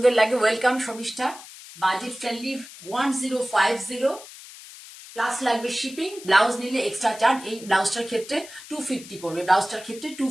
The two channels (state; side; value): noise; left; hiss, 17 dB below the sound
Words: লাগে। Welcome Sharmishtha, budget friendly 1050 plus লাগবে শিপিং, ব্লাউজ নিলে এক্সট্রা চার্জ। এই ব্লাউজটার ক্ষেত্রে 250 পড়বে, ব্লাউজটার ক্ষেত্রে